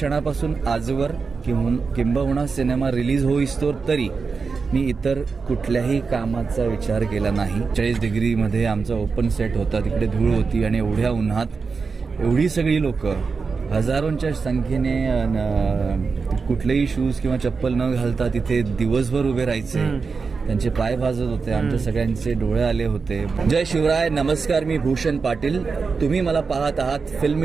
आजवर किंबहुना सिनेमा रिलीज होईस्तोवर तरी मी इतर कुठल्याही कामाचा विचार केला नाही. 40 डिग्रीमध्ये आमचा ओपन सेट होता, तिकडे धूळ होती आणि एवढ्या उन्हात एवढी सगळी लोक हजारोंच्या संख्येने कुठलेही शूज किंवा चप्पल न घालता तिथे दिवसभर उभे राहायचे. त्यांचे पाय भाजत होते, आमच्या सगळ्यांचे डोळे आले होते. जय शिवराय, नमस्कार. मी भूषण पाटील. तुम्ही मला पाहत आहात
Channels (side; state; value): left; quieter; 4.9 dB